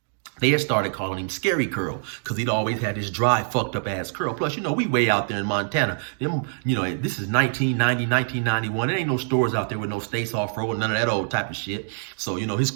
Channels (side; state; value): left; silent; digital silence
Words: they had started calling him Scary Curl, because he'd always had this dry, fucked up ass curl. Plus, we way out there in Montana. This is 1990, 1991. There ain't no stores out there with no States Off-Road, none of that old type of shit. So, his